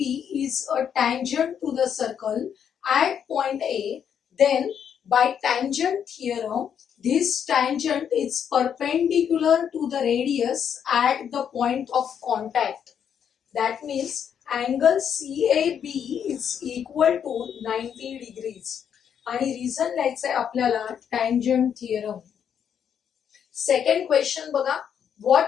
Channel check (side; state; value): right; quieter; 8.2 dB